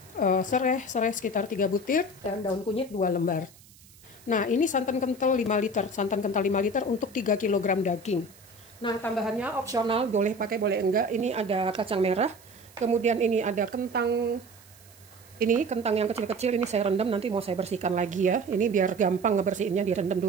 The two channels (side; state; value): right; noise; hiss, 25 dB below the sound